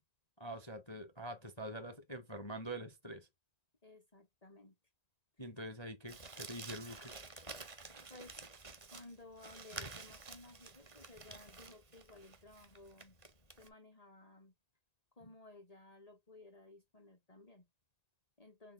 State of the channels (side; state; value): right; late; 1.9 ms